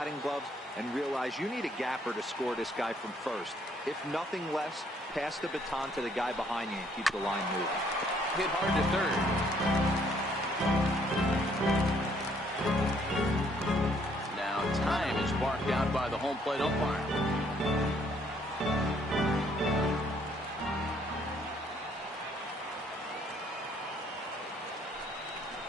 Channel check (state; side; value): normal; both; correlation 0.66